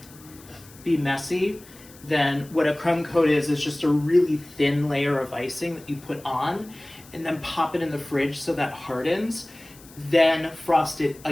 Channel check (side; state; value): left; noise; hiss, 22 dB below the sound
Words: be messy, then what a crumb coat is just a really thin layer of icing that you put on and then pop it in the fridge so that hardens, then frost it